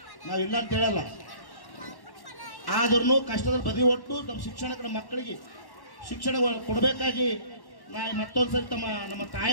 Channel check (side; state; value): right; late; 1.1 ms